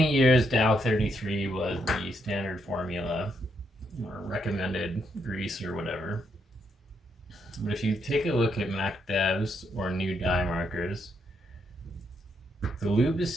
years, Dow 33 was the standard formula or recommended grease or whatever. But if you take a look at Mac Devs or new dye markers, the lube is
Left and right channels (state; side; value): normal; both; correlation 0.77